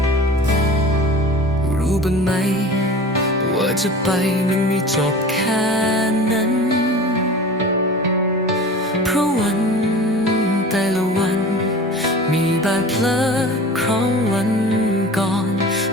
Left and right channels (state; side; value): normal; both; correlation 0.38